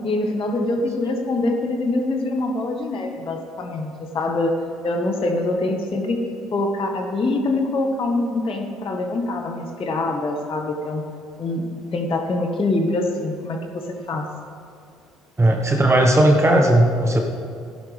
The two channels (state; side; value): normal; both; correlation 0.74